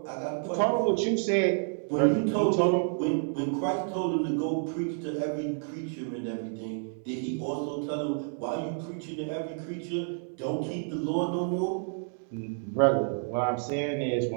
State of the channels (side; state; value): left; silent; 58 dB below the other